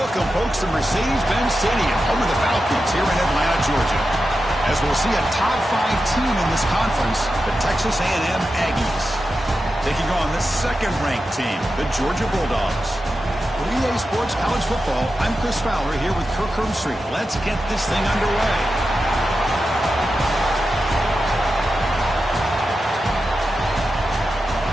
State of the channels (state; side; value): normal; both; correlation 0.90